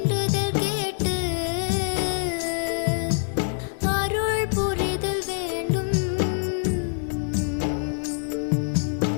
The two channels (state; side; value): silent; right; digital silence